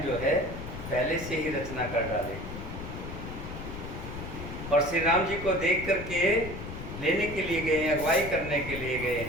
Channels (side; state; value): left; noise; rumble, 9 dB below the sound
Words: जो है पहले से ही रचना कर डाली और श्री राम जी को देख करके लेने के लिए गए हैं, अगुवाई करने के लिए गए